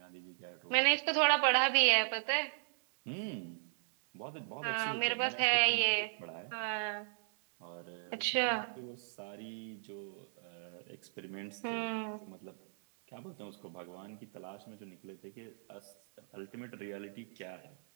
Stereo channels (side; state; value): left; silent; 53 dB below the other